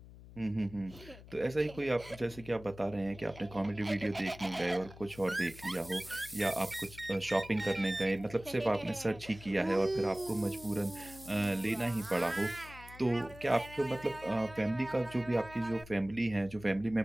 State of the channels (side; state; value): left; noise; hum, 18 dB below the sound